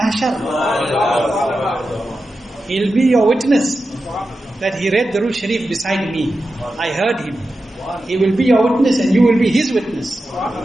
He'll be your witness that he read Durood Sharif beside me. I heard him. He will be your witness and you will be his witness.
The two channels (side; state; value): both; normal; correlation 0.91